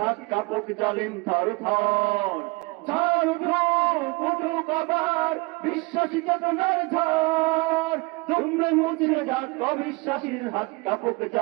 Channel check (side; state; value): left; quieter; 26.2 dB